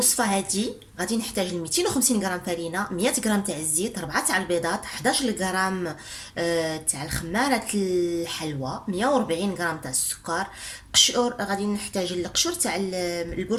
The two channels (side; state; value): both; identical; correlation 1.00